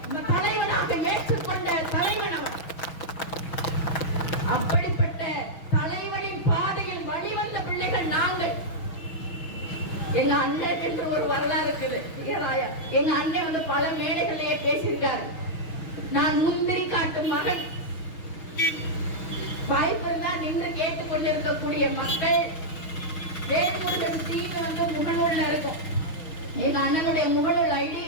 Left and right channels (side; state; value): right; late; 6.2 ms